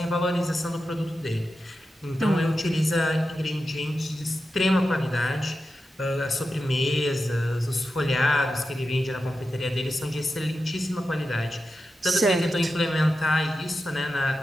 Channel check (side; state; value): both; normal; correlation 0.91